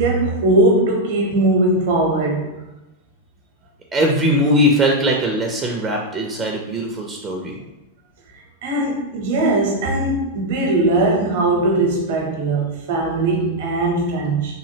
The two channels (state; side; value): normal; both; correlation 0.01